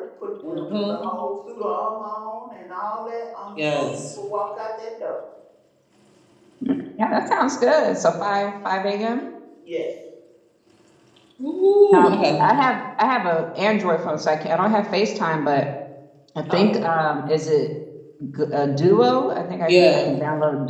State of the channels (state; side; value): identical; both; correlation 1.00